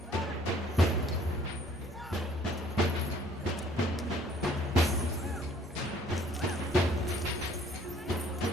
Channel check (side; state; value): both; normal; correlation 0.58